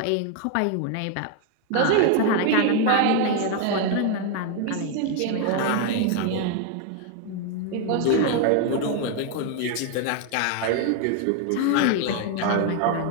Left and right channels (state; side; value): different; both; correlation 0.01